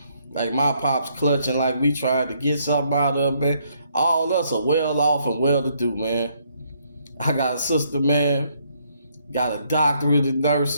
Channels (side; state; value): both; inverted; correlation -0.71